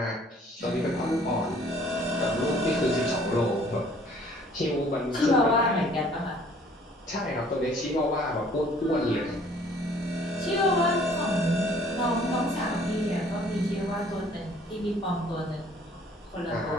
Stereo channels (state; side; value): normal; both; correlation 0.56